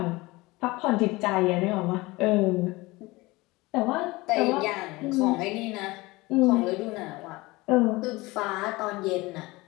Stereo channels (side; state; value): right; quieter; 21.7 dB